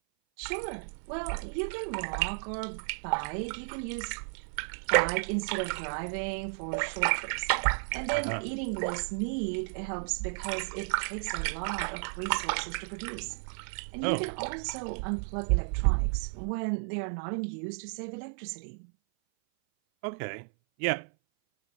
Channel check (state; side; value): silent; left; 56 dB below the other